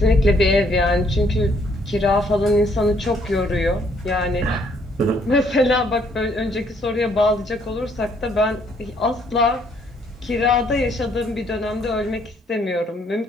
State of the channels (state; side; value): normal; both; correlation 0.67